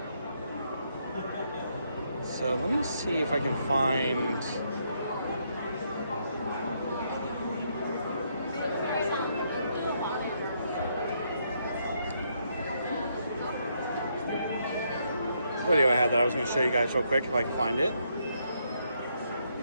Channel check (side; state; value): both; inverted; correlation -0.75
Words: So let me see if I can find... video I had that I was going to show you guys real quick if I can find it.